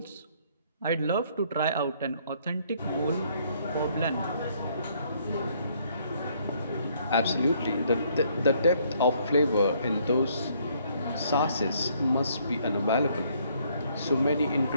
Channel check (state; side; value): inverted; both; correlation -0.66